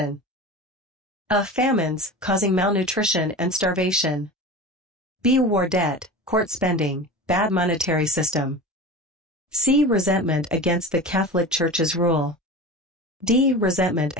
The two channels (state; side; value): normal; both; correlation 0.31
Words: A. Famines, causing malnutrition and starvation. B. War debt, court spending, bad monetary system. C. Resentment against the Catholic Church's rule. D. Resentment